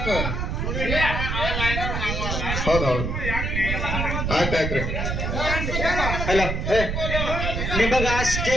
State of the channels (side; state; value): right; noise; rumble, 1 dB below the sound